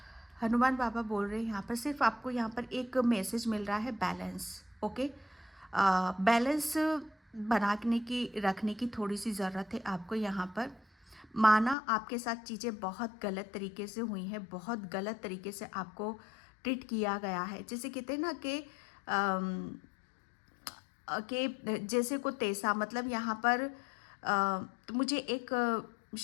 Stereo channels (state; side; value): drops out; right; at 11.8 s